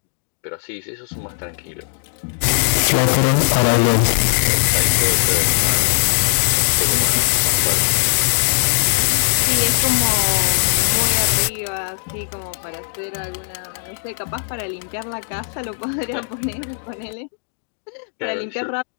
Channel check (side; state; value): right; silent; digital silence